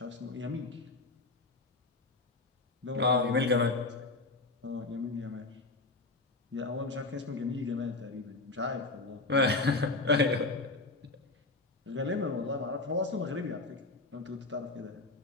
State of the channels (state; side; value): quieter; right; 3.3 dB